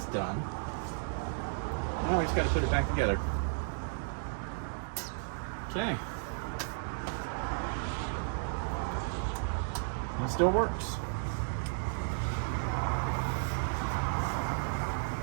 done. Now we just got to put it back together. Okay. It still works.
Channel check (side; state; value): left; silent; digital silence